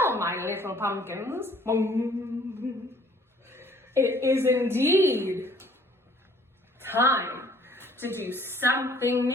my little pumpkins, it is indeed time to do something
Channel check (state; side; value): normal; both; correlation 0.57